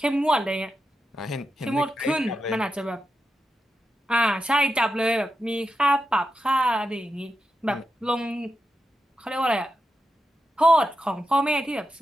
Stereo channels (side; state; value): both; normal; correlation 0.88